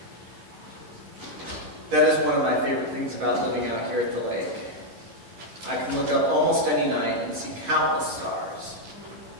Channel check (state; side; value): late; left; 11 ms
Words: That is one of my favorite things about living out here at the lake. I can look up almost any night and see countless stars.